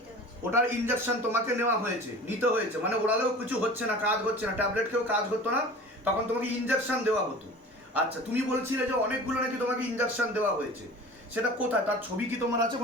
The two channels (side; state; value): both; normal; correlation 0.40